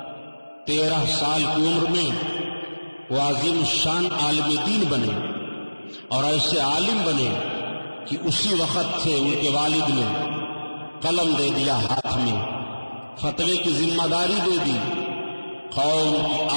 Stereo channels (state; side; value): inverted; both; correlation -1.00